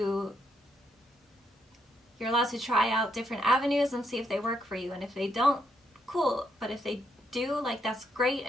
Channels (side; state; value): both; normal; correlation 0.77